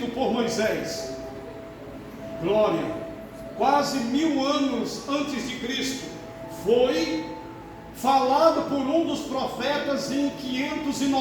por Moisés. Glória. Quase 1000 anos antes de Cristo. Foi falado por um dos profetas em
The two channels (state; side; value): identical; both; correlation 1.00